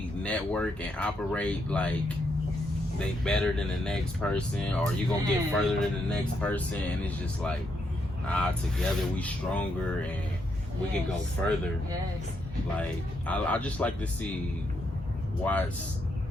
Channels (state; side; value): normal; both; correlation 0.78